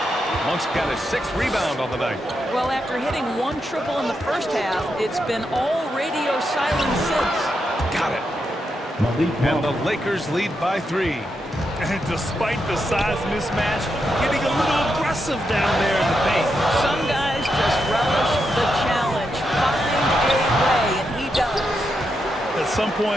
Monk's got his 6th rebound on the night. Well, after hitting 1 triple in the first half, it's been all radio silence since. Got it. And the Lakers lead by 3. And despite the size mismatch, getting a little aggressive down there in the paint. Some guys just relish the challenge. Find a way, and he does. At some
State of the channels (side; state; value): both; normal; correlation 0.84